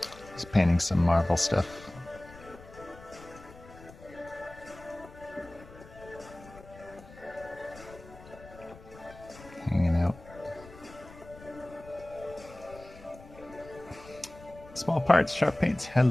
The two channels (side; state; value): left; noise; rumble, 19 dB below the sound